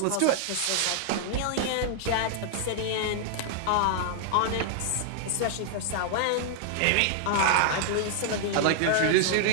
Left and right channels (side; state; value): both; different; correlation -0.01